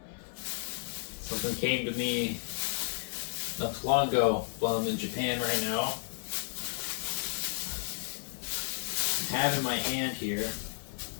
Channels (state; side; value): silent; right; 56 dB below the other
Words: Something came to me not too long ago while I'm in Japan right now. I have in my hand here